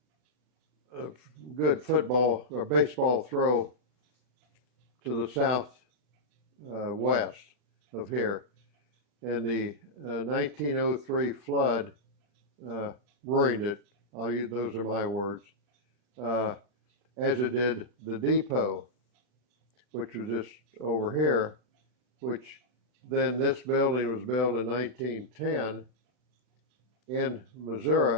good football or baseball throw to the south west of here. And the 1903 flood ruined it. Those are my words. As it did the depot, which was just over here, which then this building was built in 1910 in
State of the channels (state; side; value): late; left; 40 ms